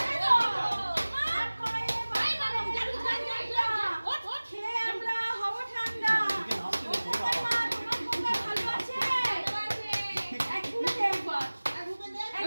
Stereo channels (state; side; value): inverted; both; correlation -1.00